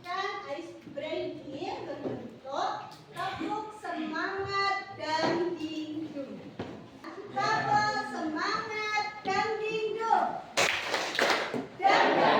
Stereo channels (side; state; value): both; identical; correlation 1.00